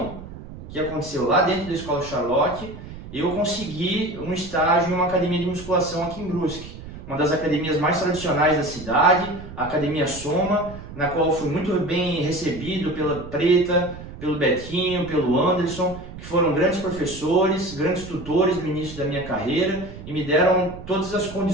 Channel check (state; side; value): noise; right; rumble, 13 dB below the sound